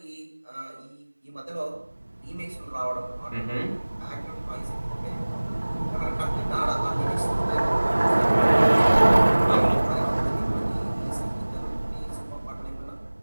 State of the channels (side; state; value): both; inverted; correlation -1.00